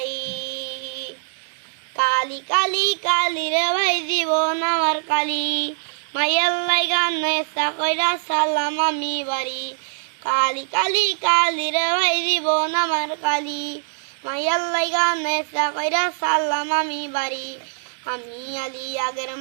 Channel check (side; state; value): left; silent; digital silence